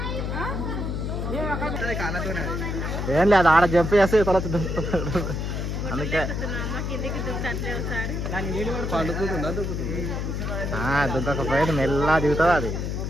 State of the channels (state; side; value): noise; left; hum, 2 dB below the sound